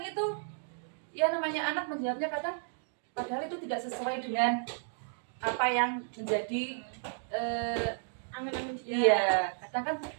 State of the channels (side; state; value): left; silent; digital silence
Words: itu ya namanya anak menjawabnya kadang padahal itu tidak sesuai dengan apa yang menjadi angan-angan dia. Iya, kadang kan